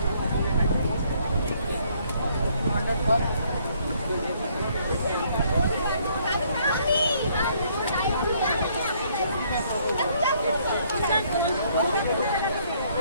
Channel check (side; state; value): both; inverted; correlation -0.66